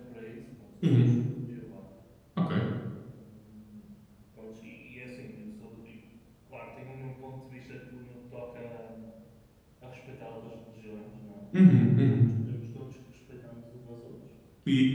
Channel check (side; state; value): both; identical; correlation 1.00